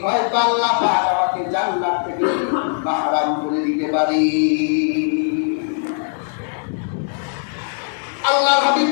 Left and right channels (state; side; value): silent; right; digital silence